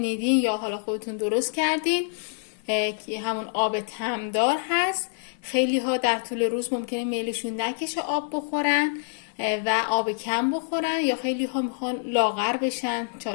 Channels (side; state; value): right; silent; 61 dB below the other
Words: یا حالا خودتون درست کردین که همون آب تمدار هست. خیلی ها در طول روز ممکنه میلشون نکشه آب بخورن و آب کم بخورن، یا خیلی ها میخوان لاغر بشن،